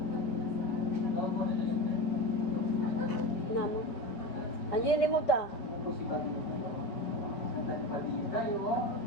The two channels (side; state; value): right; late; 5.5 ms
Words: Tingnan mo. Andiyan yung remote ah.